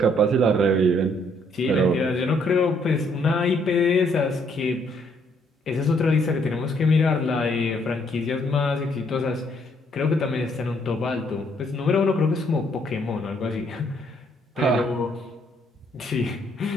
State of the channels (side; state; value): both; normal; correlation 0.69